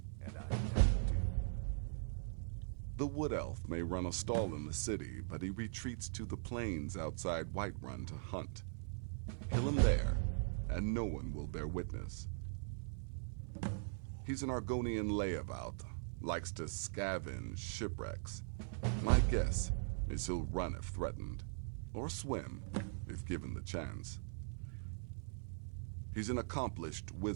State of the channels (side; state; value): left; silent; 50 dB below the other